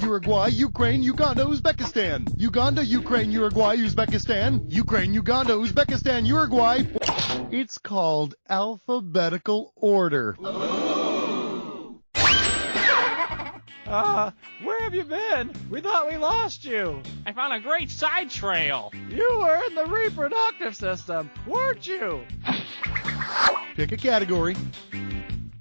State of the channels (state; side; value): inverted; both; correlation -1.00